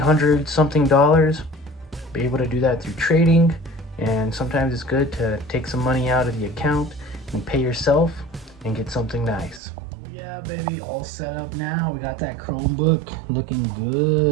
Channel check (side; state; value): left; drops out; at 9.6 s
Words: something. Be able to do that through trading, and sometimes it's good to take some money out of the account and pay yourself and get something nice. Yeah, baby, all set up now. We got that Chromebook looking